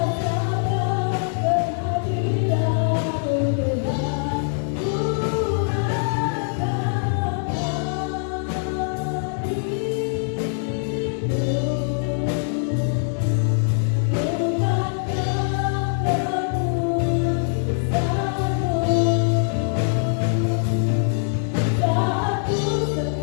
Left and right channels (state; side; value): silent; right; digital silence